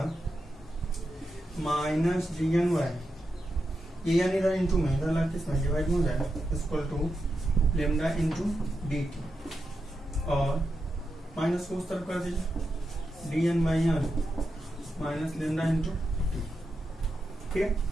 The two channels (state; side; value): normal; both; correlation 0.87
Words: माइनस dn बाई, ये यानी इधर इंटू में, इधर लग किसमें डिवाइड में हो जाएगा, equal to lambda into dt, और माइनस को उस तरफ कर दीजिए, dn by n minus lambda into T. ठीक है,